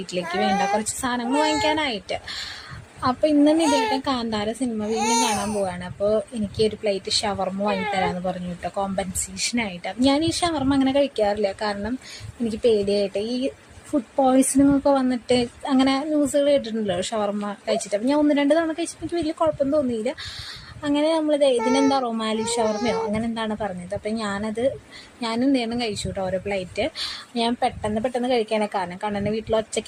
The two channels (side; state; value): both; identical; correlation 1.00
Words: വേണ്ട കുറച്ച് സാധനങ്ങൾ വാങ്ങിക്കാനായിട്ട്. അപ്പോൾ ഇന്ന് നിത്യേട്ടൻ കാന്താര സിനിമ വീണ്ടും കാണാൻ പോവാണ്. അപ്പോൾ എനിക്ക് ഒരു പ്ലേറ്റ് ഷവർമ്മ വാങ്ങിത്തരാമെന്ന് പറഞ്ഞു കേട്ടോ, കോമ്പൻസേഷനായിട്ട്. ഞാൻ ഈ ഷവർമ്മ അങ്ങനെ കഴിക്കാറില്ല, കാരണം എനിക്ക് പേടിയായിട്ട് ഈ ഫുഡ് പോയ്സണിങ് ഒക്കെ വന്നിട്ട് അങ്ങനെ ന്യൂസുകൾ കേട്ടിട്ടുണ്ടല്ലോ ഷവർമ്മ കഴിച്ചിട്ട്. അപ്പം ഞാൻ 1-2 തവണ കഴിച്ചപ്പോൾ എനിക്ക് വലിയ കുഴപ്പം തോന്നിയില്ല. അങ്ങനെ നമ്മളിത് ഇതിനെന്താ റൊമാലി ഷവർമ്മയോ അങ്ങനെ എന്താണ് പറഞ്ഞത്. അപ്പം ഞാനും നേരം കഴിച്ചു കേട്ടോ ഓരോ പ്ലേറ്റ്. ഞാൻ പെട്ടെന്ന് കഴിക്കാനേ, കാരണം കണ്ണനെ വീട്ടിൽ